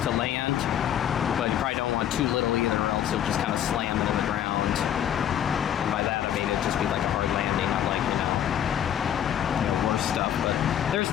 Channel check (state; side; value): quieter; right; 10.4 dB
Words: to land, but you probably don't want too little either, or else you'll just kind of slam it in the ground. Just be like a hard landing, not like, worse stuff. But there's